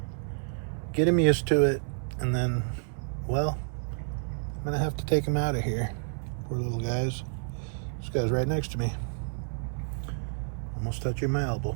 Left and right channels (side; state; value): left; silent; 58 dB below the other